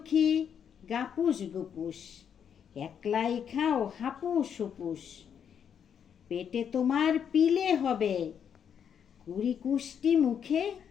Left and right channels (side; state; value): right; quieter; 8.0 dB